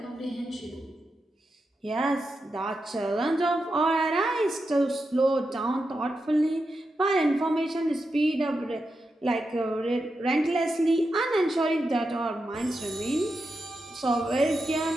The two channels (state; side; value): normal; both; correlation 0.88